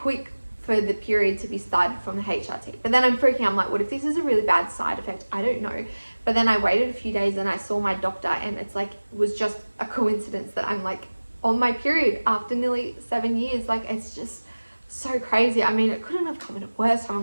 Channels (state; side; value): inverted; both; correlation -1.00